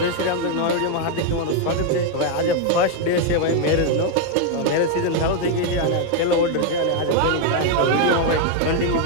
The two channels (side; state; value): both; different; correlation 0.01